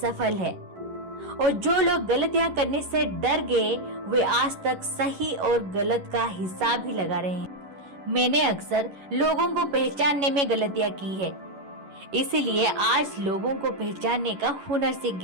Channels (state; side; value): late; left; 11 ms